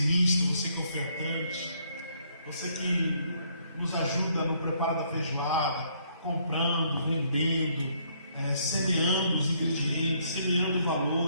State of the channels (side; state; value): both; inverted; correlation -0.68